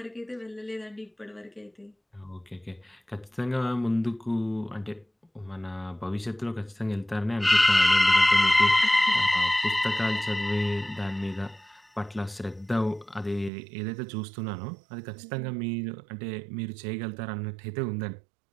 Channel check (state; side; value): drops out; left; at 13.5 s